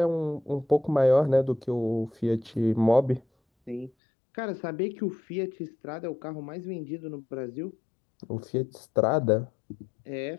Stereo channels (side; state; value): right; drops out; at 3.9 s